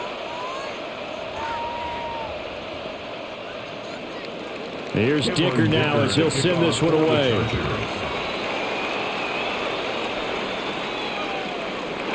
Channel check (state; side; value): identical; both; correlation 1.00